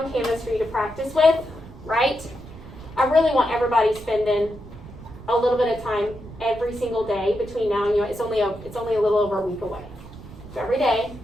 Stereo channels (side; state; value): right; noise; rumble, 16 dB below the sound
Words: Canvas for you to practice with, right? I really want everybody spending a little bit of time every single day between now and it's only a little over a week away. So every day,